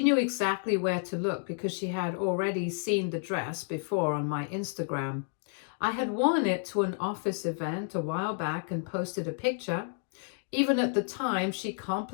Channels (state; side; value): silent; right; 57 dB below the other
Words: knew exactly where to look because she had already seen the dress before on my Instagram. I had worn it to an office event a while back and posted a picture. Even at the time, she